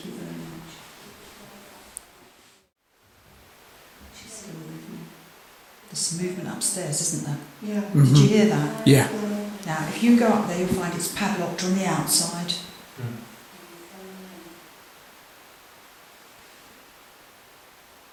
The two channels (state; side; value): identical; both; correlation 1.00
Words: you very much. She's still with me. There's some movement upstairs, isn't there? Yeah. Did you hear that? Yeah. Now, if you go up there, you'll find it's padlocked on the outside.